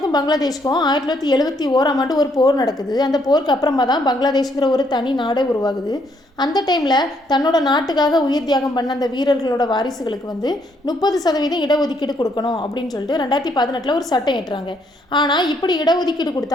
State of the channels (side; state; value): both; normal; correlation 0.71